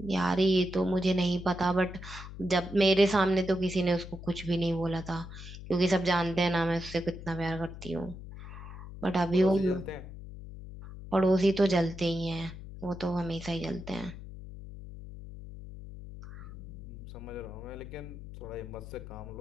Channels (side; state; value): left; noise; hum, 12 dB below the sound